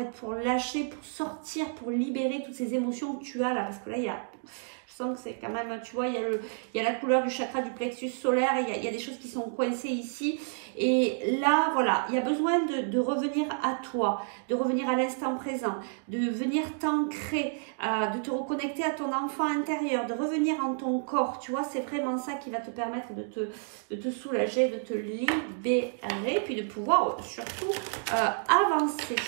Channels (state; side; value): silent; left; digital silence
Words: pour lâcher, pour sortir, pour libérer toutes ces émotions que tu as là, parce que là, je sens que c'est quand même, tu vois, il y a la couleur du chakra du plexus solaire, il y a des choses qui sont coincées ici, et là, voilà, il y a besoin de revenir à toi, de revenir à l'instant présent, de venir t'ancrer, de te reconnecter à ton enfant intérieur, de revenir en ton corps, tu vois, c'est vraiment ça qui va te permettre de te soulager, de te libérer, puis de pouvoir surtout avancer.